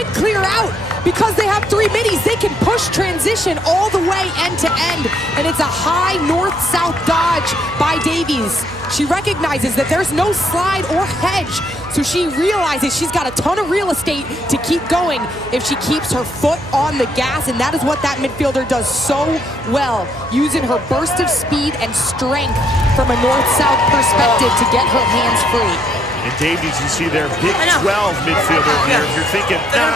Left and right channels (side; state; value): right; noise; hum, 16 dB below the sound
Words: clear out. Because they have 3 middies, they can push transition all the way end to end. And it's a high north-south dodge by Davies. She recognizes that there's no slide or hedge, so she realizes she's got a ton of real estate to keep going if she keeps her foot on the gas, and that is what that midfielder does so well, using her burst of speed and strength from a north-south perspective to get her hands free. And Davies, you see their Big 12 midfielder here. If you're thinking,